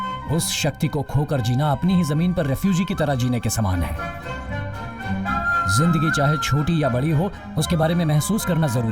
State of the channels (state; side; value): identical; both; correlation 1.00